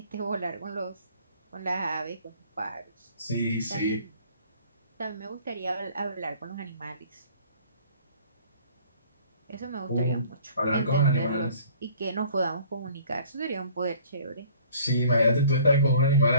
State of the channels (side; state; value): both; inverted; correlation -0.53